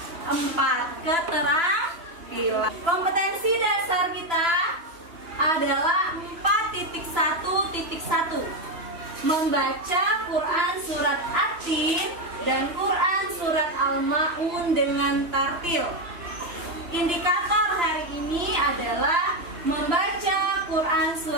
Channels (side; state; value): left; late; 2.9 ms